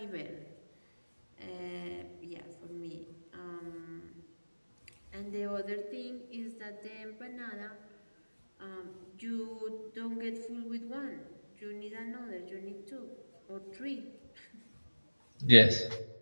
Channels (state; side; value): inverted; both; correlation -1.00